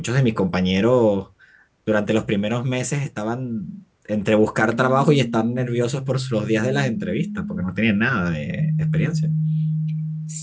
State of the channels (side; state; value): both; identical; correlation 1.00